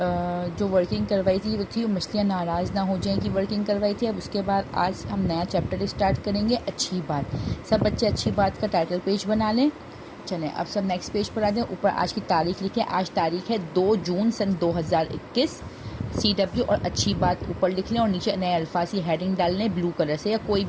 जो वर्किंग करवाई थी वो थी मछलियाँ नाराज़ ना हो जाएं की वर्किंग करवाई थी। अब उसके बाद आज हम नया चैप्टर स्टार्ट करेंगे, अच्छी बात। सब बच्चे अच्छी बात का टाइटल पेज बना लें। चलें अब सब नेक्स्ट पेज पर आ जाएं। ऊपर आज की तारीख लिखें। आज तारीख है 2 जून सन 2021। CW और अच्छी बात ऊपर लिख लें और नीचे नए अल्फाज की हेडिंग डाल लें ब्लू कलर से या कोई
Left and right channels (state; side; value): identical; both; correlation 1.00